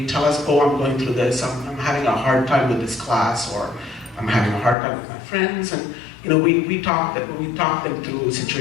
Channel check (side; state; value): right; drops out; at 4.8 s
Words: tell us, oh, I'm going through this, I'm having a hard time with this class, or I'm having a hard time with my friends, and we talk them through